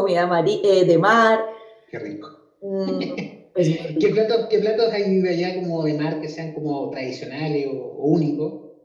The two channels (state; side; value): identical; both; correlation 1.00